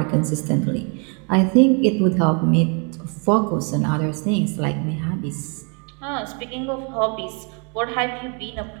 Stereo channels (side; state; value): left; quieter; 36.1 dB